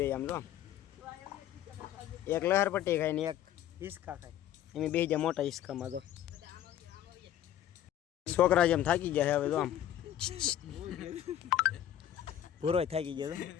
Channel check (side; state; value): right; quieter; 11.4 dB